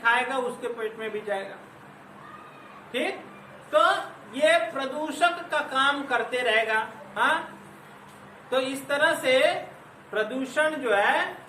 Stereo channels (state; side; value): identical; both; correlation 1.00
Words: उसके पेट में भी जाएगा, ठीक। तो ये प्रदूषक का काम करते रहेगा। हाँ, तो इस तरह से प्रदूषण जो है